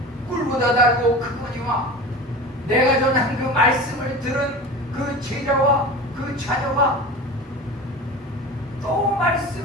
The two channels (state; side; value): normal; both; correlation 0.33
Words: 꿀보다 달고 크거니와 내가 전한 그 말씀을 들은 그 제자와 그 자녀가 또